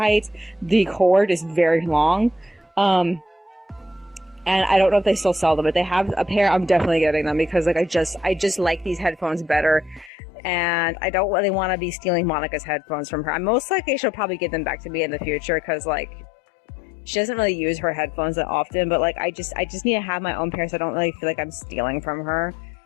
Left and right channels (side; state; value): right; drops out; at 10.1 s